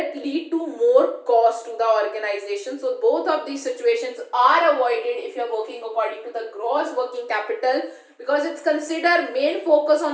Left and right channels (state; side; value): identical; both; correlation 1.00